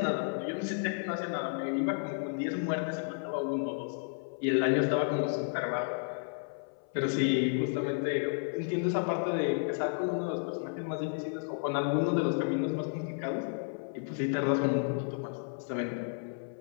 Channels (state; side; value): silent; right; 56 dB below the other